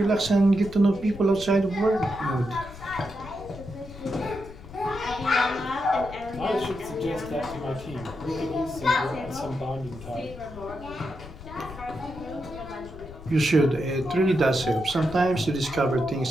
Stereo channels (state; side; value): noise; left; rumble, 15 dB below the sound